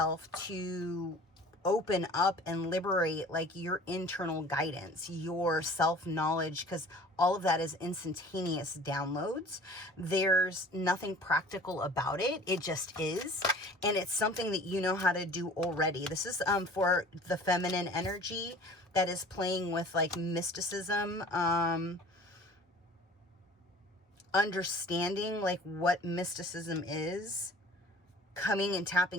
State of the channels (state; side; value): normal; both; correlation 0.46